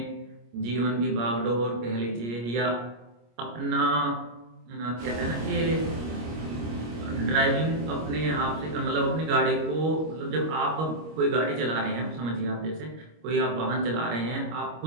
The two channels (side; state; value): left; late; 25 ms